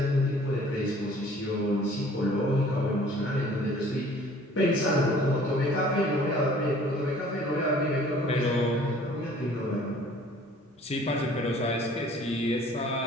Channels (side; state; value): both; normal; correlation 0.52